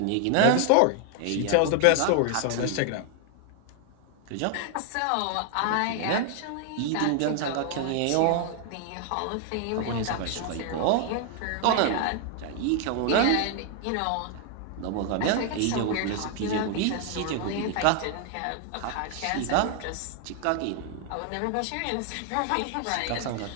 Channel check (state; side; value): different; both; correlation 0.00